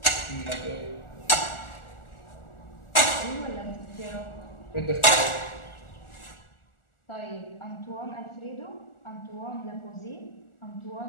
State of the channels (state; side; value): late; right; 1.4 ms